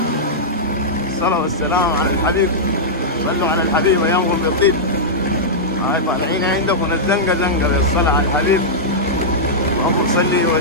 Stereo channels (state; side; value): normal; both; correlation -0.10